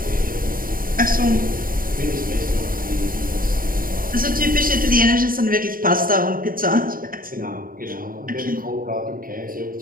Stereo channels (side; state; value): left; late; 0.41 ms